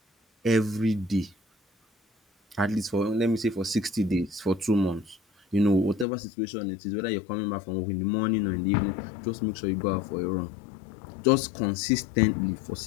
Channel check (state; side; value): drops out; right; at 6.1 s